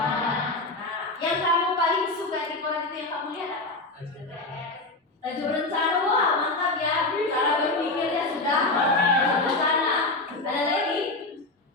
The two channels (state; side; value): quieter; right; 3.0 dB